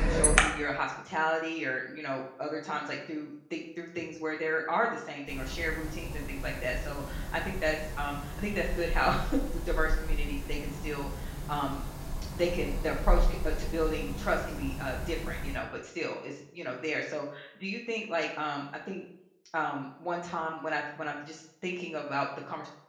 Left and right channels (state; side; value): identical; both; correlation 1.00